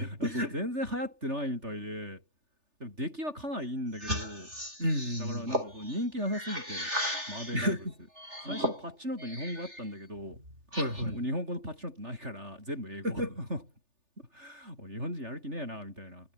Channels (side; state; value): left; late; 3.4 ms